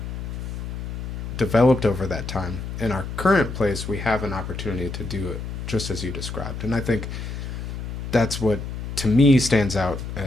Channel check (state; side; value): noise; left; hum, 6 dB below the sound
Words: developed over that time. In our current place, we have an opportunity to do it just as you described. And I think that's what, to me, stands out